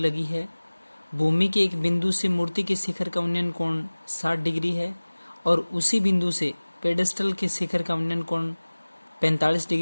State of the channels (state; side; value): inverted; both; correlation -1.00